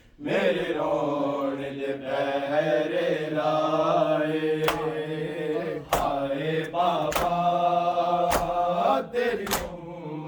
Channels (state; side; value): identical; both; correlation 1.00